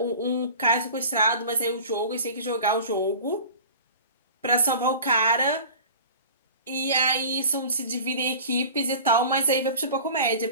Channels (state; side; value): inverted; both; correlation -0.39